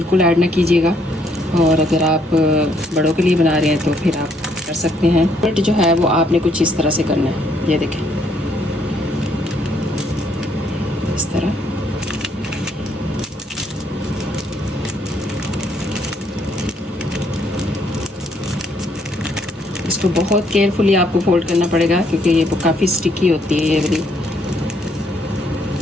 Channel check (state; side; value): normal; both; correlation 0.70